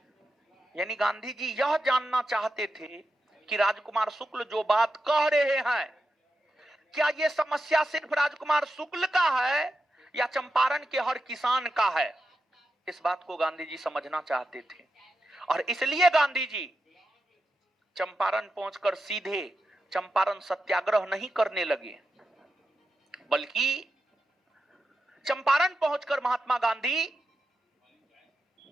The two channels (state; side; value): normal; both; correlation 0.89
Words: यानी गांधी जी यह जानना चाहते थे कि राजकुमार शुक्ल जो बात कह रहे हैं, क्या यह समस्या सिर्फ राजकुमार शुक्ल का है या चंपारण के हर किसान का है। इस बात को गांधी जी समझना चाहते थे और इसलिए गांधी जी चंपारण पहुंचकर सीधे चंपारण सत्याग्रह नहीं करने लगे, बल्कि चंपारण पहुंचकर महात्मा गांधी